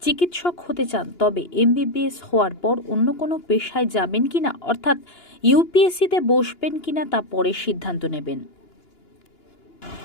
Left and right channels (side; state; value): right; late; 2.9 ms